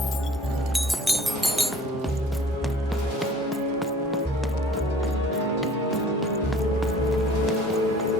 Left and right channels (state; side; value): normal; both; correlation 0.50